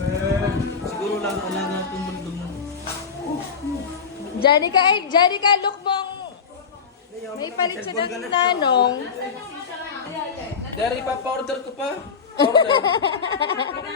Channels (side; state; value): right; quieter; 6.0 dB